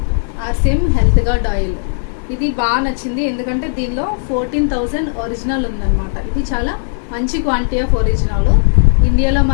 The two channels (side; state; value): right; silent; digital silence